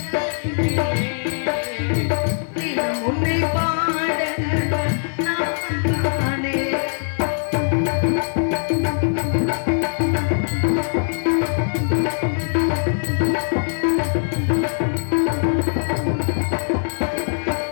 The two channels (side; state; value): right; silent; 65 dB below the other